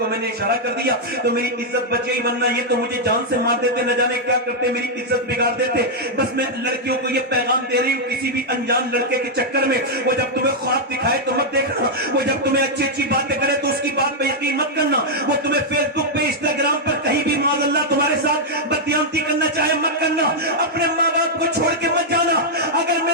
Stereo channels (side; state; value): both; normal; correlation -0.04